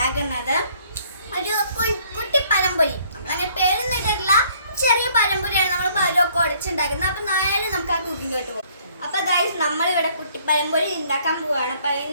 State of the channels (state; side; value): inverted; both; correlation -0.61